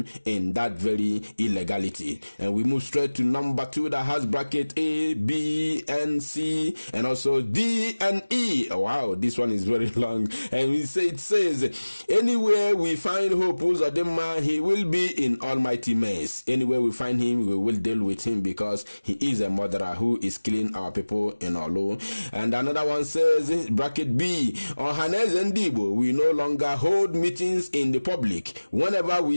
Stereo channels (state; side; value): inverted; both; correlation -1.00